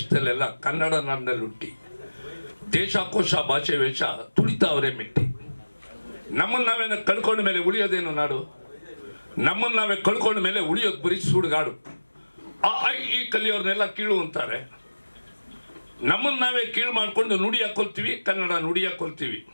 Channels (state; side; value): inverted; both; correlation -1.00